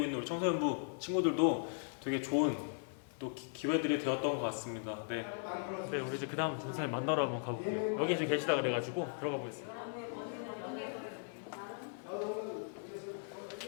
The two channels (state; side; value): silent; right; 52 dB below the other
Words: 있는 우리 청소년부 친구들도 되게 좋은 또 기회들이 되었던 것 같습니다. 네, 우리 이제 그 다음 전사님 만나러 한번 가볼게요. 여기 지금 계시다 그래가지고 들어가 보겠습니다.